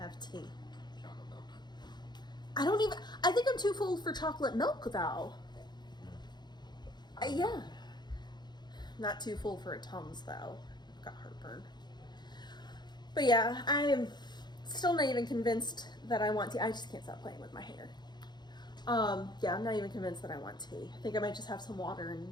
tea. Chocolate milk. I think I'm too full for chocolate milk though. Yeah. Not too full for a Tums though. I've got heartburn. But yeah, Still not even convinced that I want tea. I just can't stop playing with my hair. Yeah, I'm not even convinced that I want tea. I think I might just have some water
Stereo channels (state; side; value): late; right; 0.21 ms